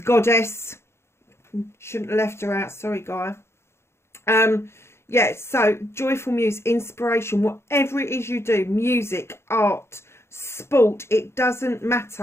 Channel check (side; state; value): right; late; 0.12 ms